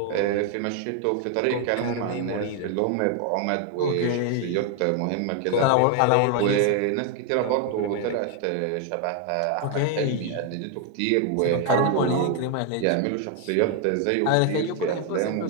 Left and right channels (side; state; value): both; different; correlation 0.01